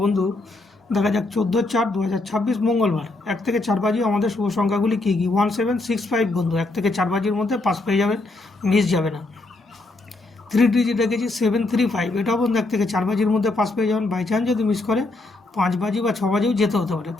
বন্ধু, দেখা যাক 14/4/2026 মঙ্গলবার 1 থেকে 4 বাজি আমাদের শুভ সংখ্যাগুলি কী কী। 1765 বন্ধু, 1 থেকে 4 বাজির মধ্যে পাস পেয়ে যাবেন, মিস যাবে না। 3 ডিজিট রেখেছি 735, এটাও বন্ধু 1 থেকে 4 বাজির মধ্যে পাস পেয়ে যাবেন। বাই চান্স যদি মিস করে 5 বাজি বা 6 বাজিও যেতে হতে পারে,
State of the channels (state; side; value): quieter; right; 3.0 dB